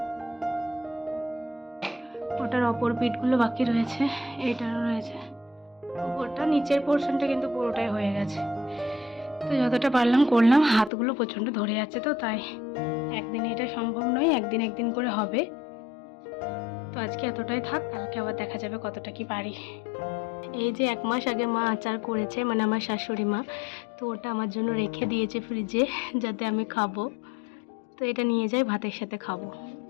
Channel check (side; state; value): right; drops out; at 10.9 s